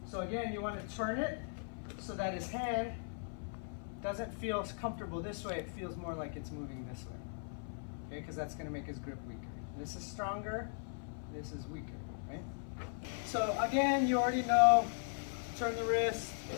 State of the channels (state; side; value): silent; right; 52 dB below the other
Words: So again, you want to turn it so that his hand doesn't feel comfortable this way. It feels more like it's moving this way. Okay, because that's going to make his grip weaker. This is stronger, this is weaker, right? So again, you already know, turn the wrist